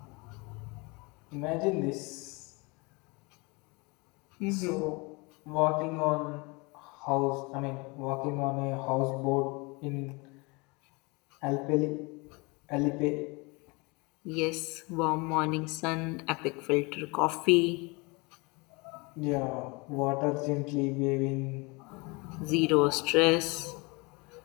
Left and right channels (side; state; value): right; quieter; 27.5 dB